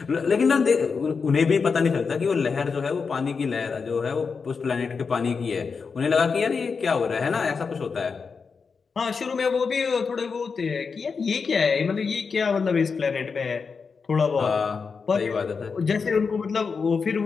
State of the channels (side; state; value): right; quieter; 5.3 dB